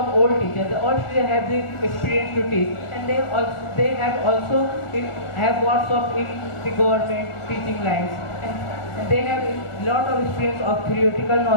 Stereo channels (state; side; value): late; right; 1.5 ms